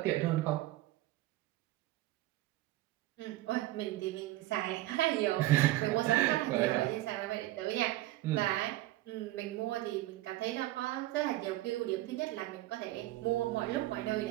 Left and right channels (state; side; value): quieter; left; 16.8 dB